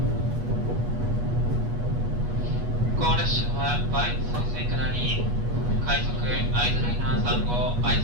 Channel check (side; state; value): left; late; 8.3 ms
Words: この列車は梅津再生下り快速会津ライナー3号会